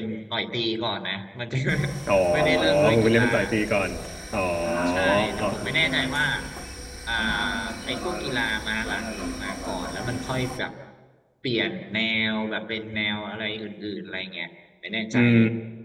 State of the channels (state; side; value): identical; both; correlation 1.00